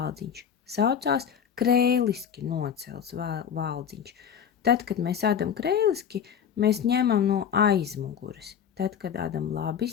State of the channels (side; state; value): right; quieter; 8.1 dB